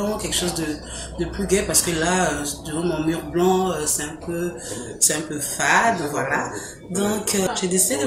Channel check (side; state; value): both; identical; correlation 1.00